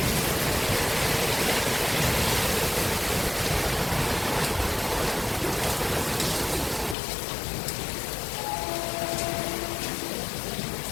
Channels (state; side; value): drops out; right; at 7.0 s